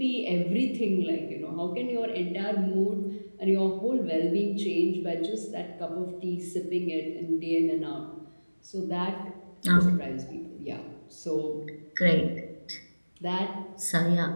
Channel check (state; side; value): inverted; both; correlation -1.00